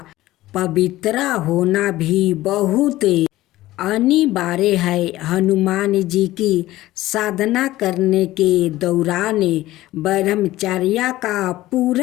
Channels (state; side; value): quieter; right; 16.3 dB